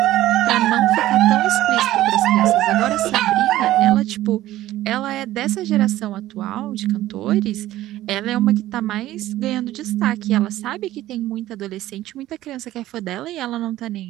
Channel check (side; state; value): left; quieter; 14.9 dB